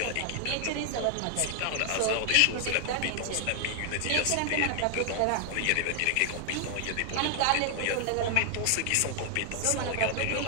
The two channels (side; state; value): both; different; correlation 0.00